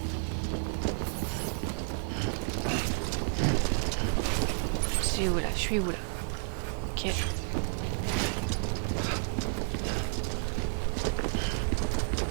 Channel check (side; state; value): left; silent; digital silence